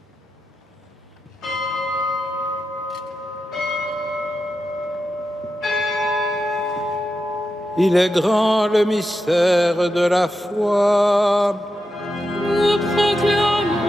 Il est grand le mystère de la foi.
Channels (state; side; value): normal; both; correlation 0.88